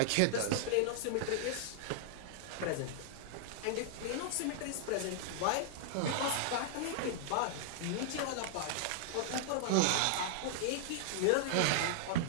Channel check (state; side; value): different; both; correlation -0.01